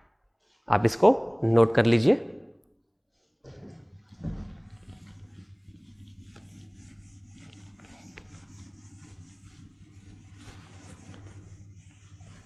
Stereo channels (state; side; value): identical; both; correlation 1.00